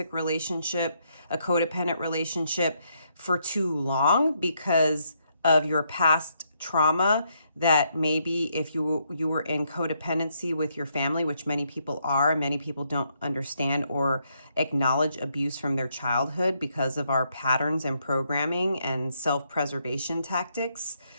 relationship, a codependent relationship for too long because of your past trauma, that maybe if you were in codependency with your family, which many people are, many people don't understand or acknowledge abuse from their childhood because of our patterns and programming and self-preservation tactics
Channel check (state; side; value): inverted; both; correlation -0.75